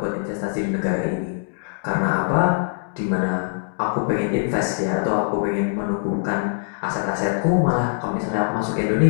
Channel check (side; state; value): right; silent; digital silence